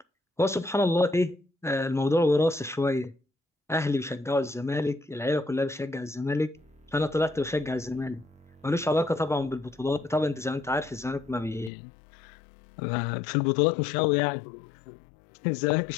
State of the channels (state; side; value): drops out; right; at 11.7 s